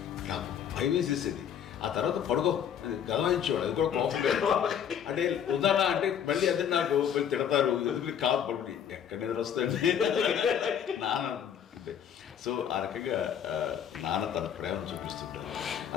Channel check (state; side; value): quieter; right; 8.8 dB